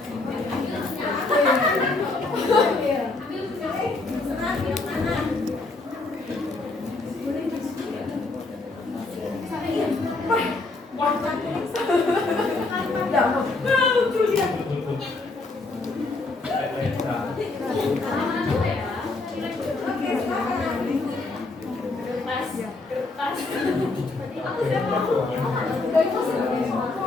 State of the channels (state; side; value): quieter; right; 3.4 dB